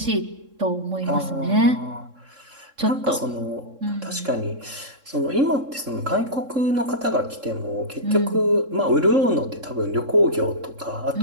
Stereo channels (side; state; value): left; late; 3.7 ms